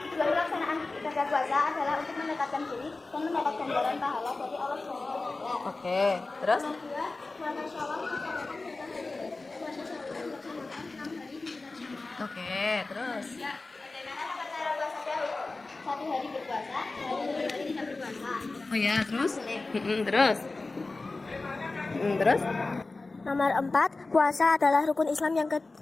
pelaksanaan ibadah puasa adalah untuk mendekatkan diri dan mendapat ganjaran pahala dari Allah SWT. Oke. Terus? Kedua, puasa Syawal melaksanakan puasa Syawal dilaksanakan 6 hari di bulan Syawal. Oke. Terus? Bagaimana cara puasa Daud? 1 hari berpuasa, 2 hari tidak berpuasa. Oh ya. Terus? Terus? Terus? Nomor 4, puasa adalah rukun Islam yang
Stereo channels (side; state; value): right; quieter; 3.4 dB